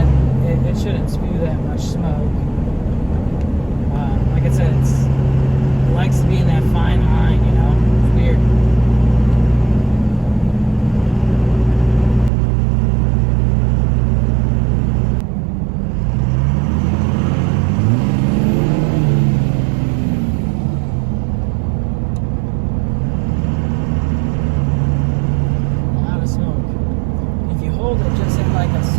spew that much smoke. Like I said, it likes to be in that fine line, you know. It's weird. A lot of smoke. If you hold it just at like a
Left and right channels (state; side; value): drops out; left; at 12.3 s